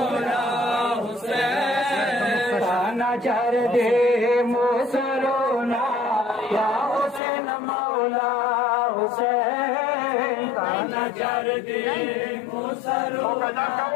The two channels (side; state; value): right; drops out; at 7.2 s